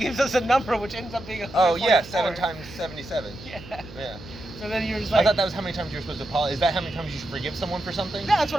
us a number which ends up being 144. Oh yeah, 7 times 77. Yeah. Yeah. So then you're just I like, thought that was how many times you're supposed to apologize. Is that how many times you should forgive someone for something? yeah, that's what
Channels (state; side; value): noise; right; hum, 17 dB below the sound